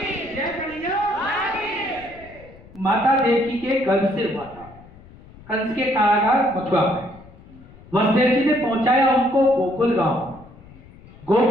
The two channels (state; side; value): noise; left; rumble, 22 dB below the sound